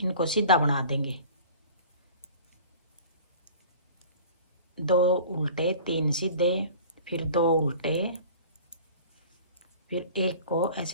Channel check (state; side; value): inverted; both; correlation -0.43